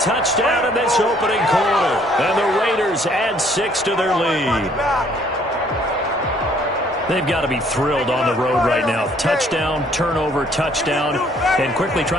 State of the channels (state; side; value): normal; both; correlation 0.62